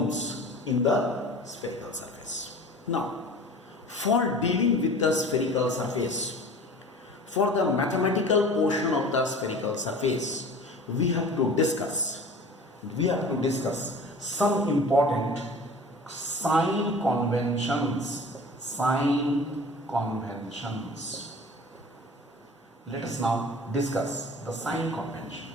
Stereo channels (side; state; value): both; normal; correlation 0.41